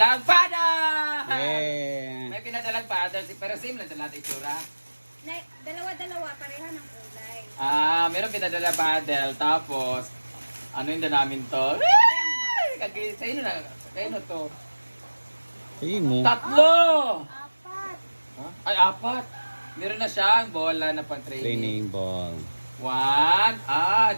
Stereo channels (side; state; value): both; inverted; correlation -1.00